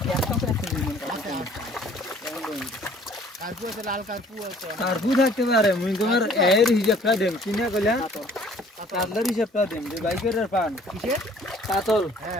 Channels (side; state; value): both; normal; correlation 0.55